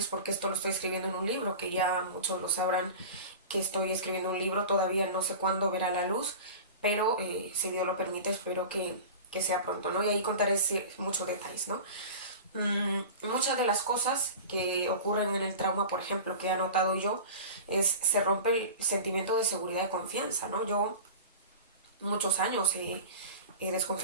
porque esto lo estoy escribiendo en un libro, que ya muchos lo sabrán que estoy escribiendo un libro, todavía no sé cuándo verá la luz, pero si Dios lo permite, espero que sea pronto, ¿no? Y ahí contaré muchos detalles, ¿no? Muchas de las cosas que ocurren en el trauma, por ejemplo, que he notado yo, se rompe el sentimiento de seguridad y confianza, ¿no? Yo muchos años he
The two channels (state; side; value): inverted; both; correlation -0.33